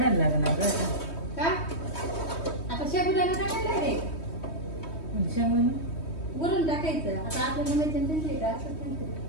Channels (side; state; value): right; late; 3.2 ms